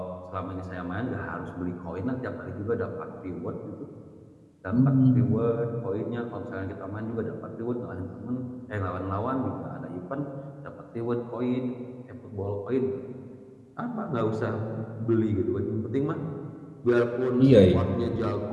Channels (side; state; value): both; identical; correlation 1.00